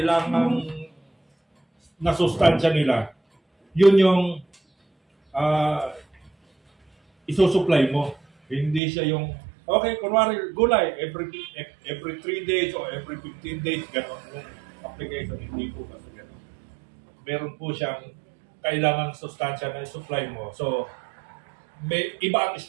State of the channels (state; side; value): drops out; left; at 8.8 s